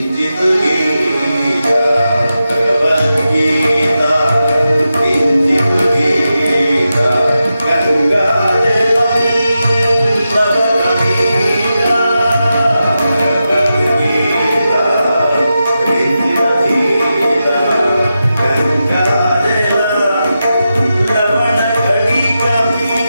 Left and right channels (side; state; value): both; inverted; correlation -0.90